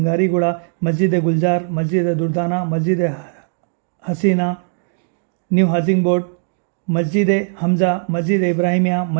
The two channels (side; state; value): left; silent; digital silence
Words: मस्जिद गुलजार, मस्जिद दुर्दाना, मस्जिद हसीना, न्यू हाउसिंग बोर्ड, मस्जिद हमज़ा, मस्जिद इब्राहिमिया,